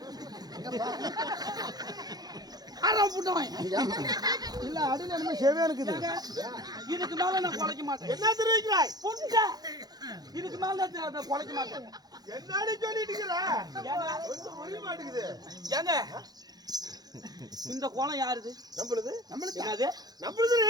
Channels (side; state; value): left; late; 0.19 ms